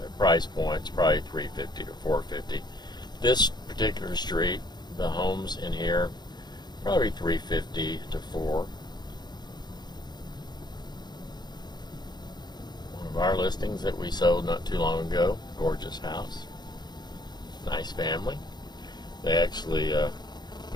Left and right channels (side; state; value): right; late; 0.21 ms